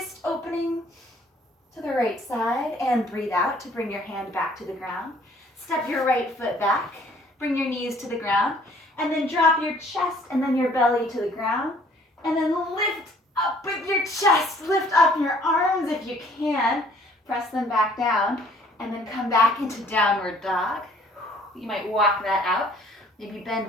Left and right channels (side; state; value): both; normal; correlation 0.58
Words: opening to the right side, and breathe out to bring your hand back to the ground. Step your right foot back Bring your knees to the ground, and then drop your chest and then your belly to the ground, and then lift up with your chest. Lift up your arms if you can. Press them back down, and then come back into downward dog. You might walk that out. Maybe